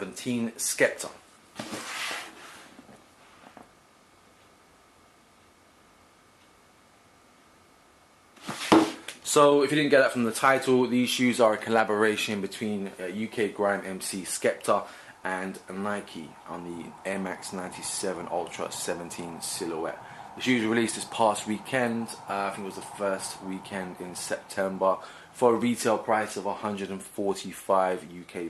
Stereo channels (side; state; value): both; identical; correlation 1.00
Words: Skepta. So, if you didn't get that from the title, these shoes are a collaboration between UK grime MC Skepta and Nike on the Air Max 97 Ultra 17 silhouette. The shoes were released this past weekend, I think it was the first weekend in September, for a retail price of 145 UK